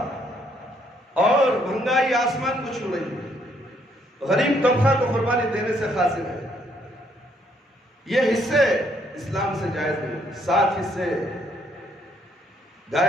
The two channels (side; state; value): both; normal; correlation 0.69